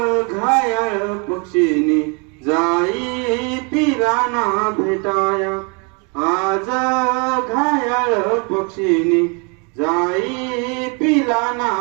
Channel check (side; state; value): left; quieter; 34.1 dB